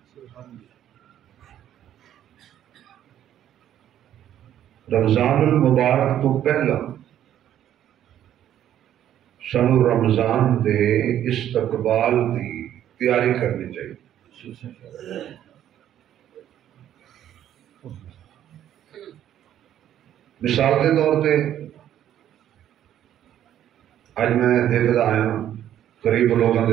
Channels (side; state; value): left; quieter; 11.1 dB